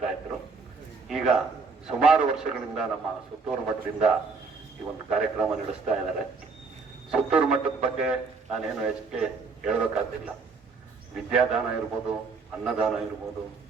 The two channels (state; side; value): quieter; left; 4.6 dB